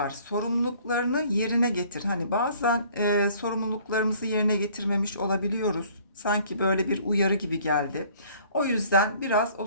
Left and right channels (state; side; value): inverted; both; correlation -0.56